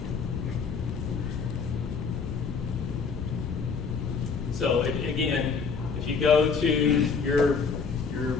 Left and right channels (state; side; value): quieter; right; 5.4 dB